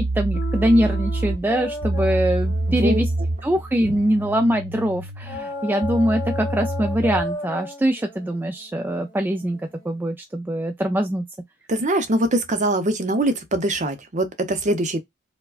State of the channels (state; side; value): normal; both; correlation 0.77